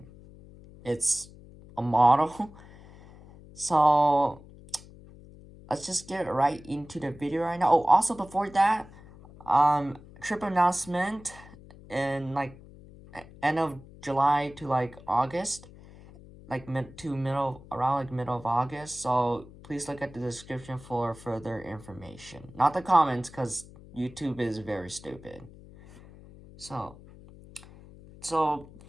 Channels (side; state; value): left; noise; hum, 20 dB below the sound